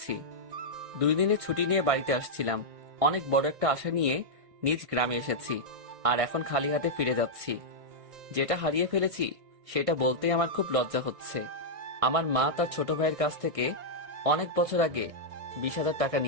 2 দিনের ছুটি নিয়ে বাড়িতে আসছিলাম। অনেক বড় একটা আশা নিয়ে নিজ গ্রামে এসেছি, আর এখন খালি হাতে ফিরে যাচ্ছি। যেটা হারিয়ে ফেলেছি সেটা বলতেই আমার খুব লজ্জা হচ্ছে। আমার মা তার ছোট ভাইয়ের কাছ থেকে অনেক বছর আগে 20,000 টাকা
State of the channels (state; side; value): late; left; 1.6 ms